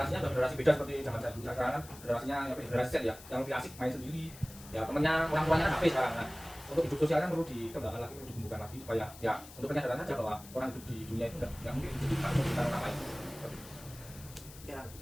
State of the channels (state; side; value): noise; left; hiss, 18 dB below the sound